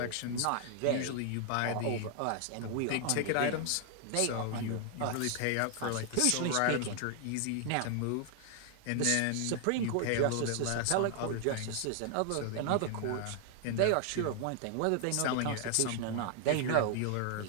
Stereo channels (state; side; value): different; both; correlation 0.00